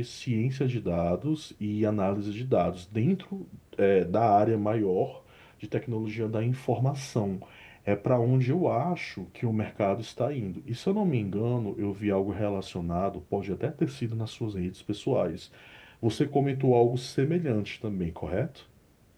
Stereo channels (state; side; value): identical; both; correlation 1.00